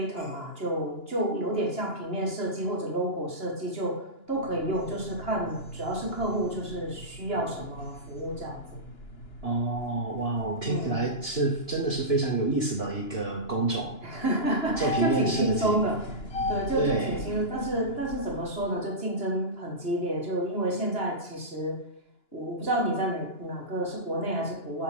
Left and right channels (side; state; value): right; late; 2.9 ms